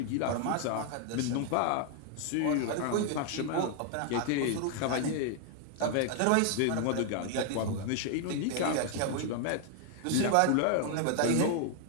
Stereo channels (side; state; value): both; different; correlation 0.00